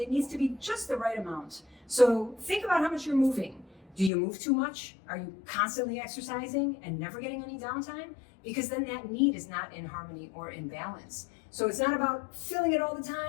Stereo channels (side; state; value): right; drops out; at 4.1 s